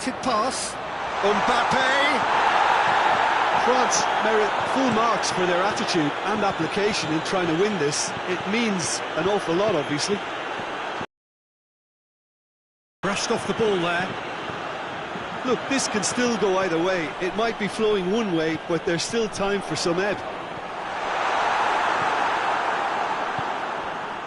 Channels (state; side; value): identical; both; correlation 1.00